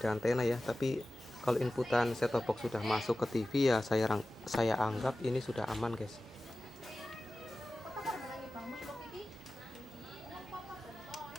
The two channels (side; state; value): both; normal; correlation 0.95